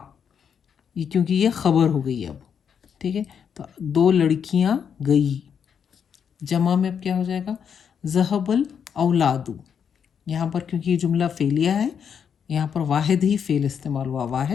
یہ کیونکہ یہ خبر ہو گئی اب. ٹھیک ہے. تو دو لڑکیاں گئی. جمع میں اب کیا ہو جائے گا ذہب الاولادو. یہاں پر کیونکہ یہ جملہ فعلیہ ہے یہاں پر واحد ہی فعل استعمال ہوا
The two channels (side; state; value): right; quieter; 7.5 dB